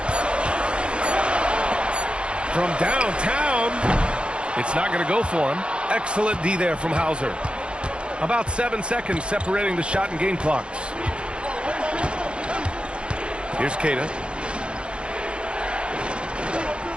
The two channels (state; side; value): late; left; 0.056 ms